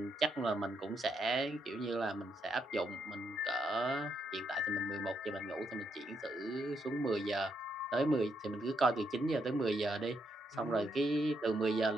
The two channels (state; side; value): normal; both; correlation 0.78